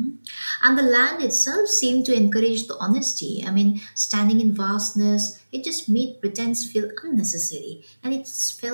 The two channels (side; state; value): both; inverted; correlation -1.00